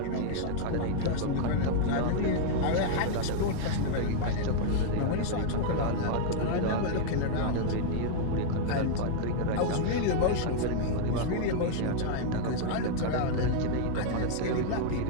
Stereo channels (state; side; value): different; both; correlation -0.01